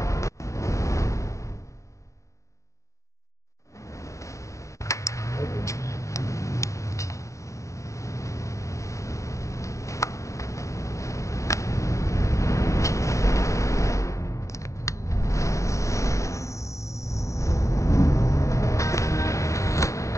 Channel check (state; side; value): late; right; 0.15 ms